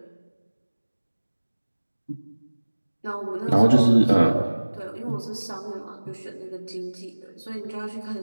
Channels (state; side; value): inverted; both; correlation -1.00